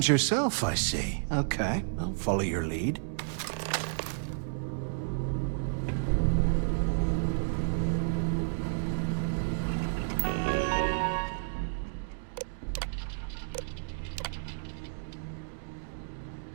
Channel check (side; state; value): left; silent; digital silence